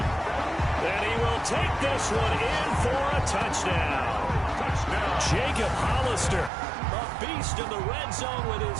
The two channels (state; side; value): drops out; left; at 6.5 s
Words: And he will take this one in for a touchdown. Jacob Hollister, a beast in the red zone with his